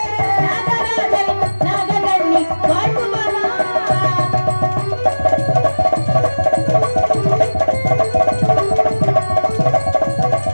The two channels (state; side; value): inverted; both; correlation -1.00